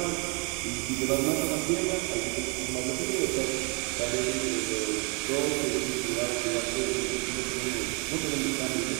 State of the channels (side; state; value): left; quieter; 33.0 dB